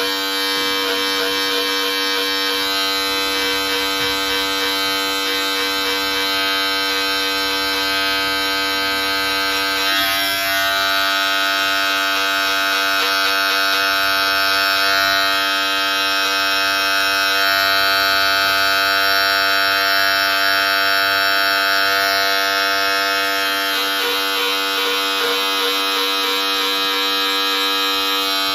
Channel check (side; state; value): both; identical; correlation 1.00